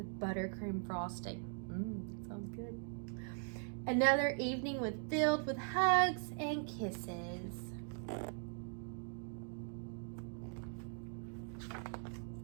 buttercream frosting. Sounds good. Another evening filled with hugs and kisses.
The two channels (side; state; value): left; silent; 51 dB below the other